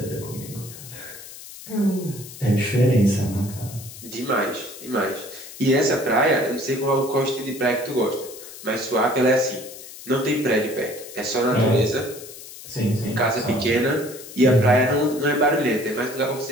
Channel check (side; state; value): left; noise; hiss, 15 dB below the sound